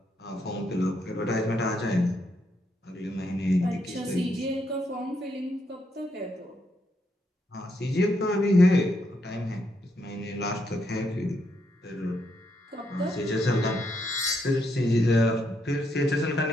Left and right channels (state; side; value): normal; both; correlation 0.78